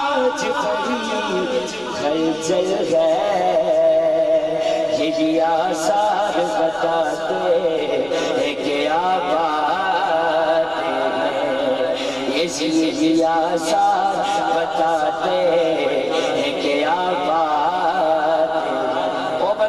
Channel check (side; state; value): left; noise; rumble, 28 dB below the sound